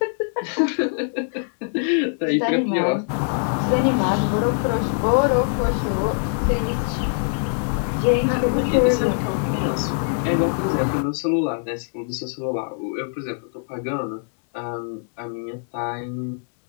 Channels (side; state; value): right; silent; 59 dB below the other